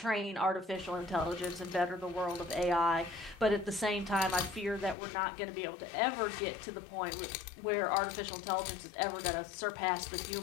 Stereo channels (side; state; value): right; drops out; at 5.0 s